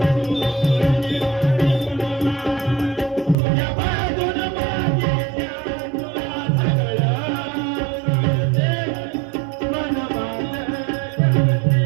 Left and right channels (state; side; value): drops out; left; at 3.4 s